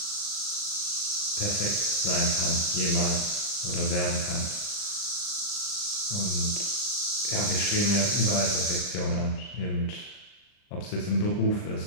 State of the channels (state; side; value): late; right; 39 ms